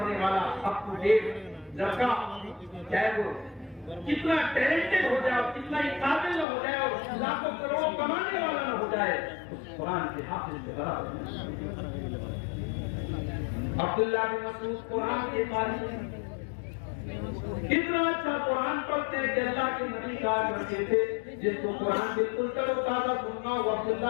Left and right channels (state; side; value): drops out; right; at 6.5 s